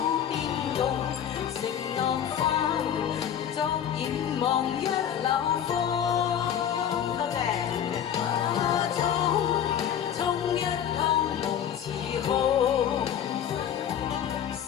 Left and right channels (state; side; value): quieter; right; 9.4 dB